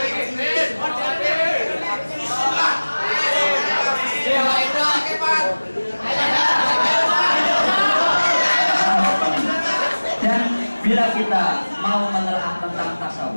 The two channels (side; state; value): both; inverted; correlation -1.00